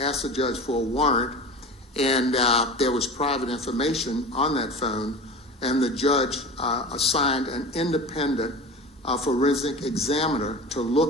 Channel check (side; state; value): both; normal; correlation 0.33